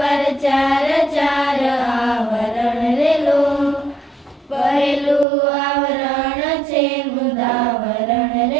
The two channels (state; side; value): drops out; left; at 5.2 s